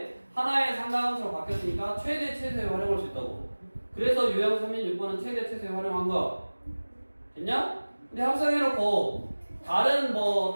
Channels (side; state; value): both; inverted; correlation -1.00